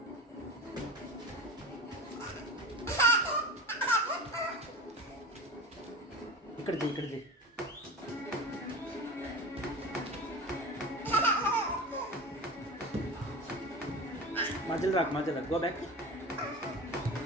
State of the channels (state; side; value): normal; both; correlation 0.31